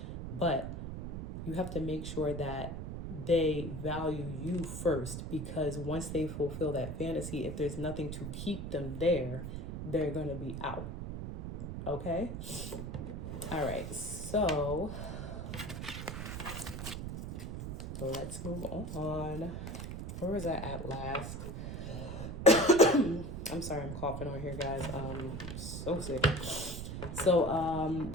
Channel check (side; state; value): right; noise; rumble, 6 dB below the sound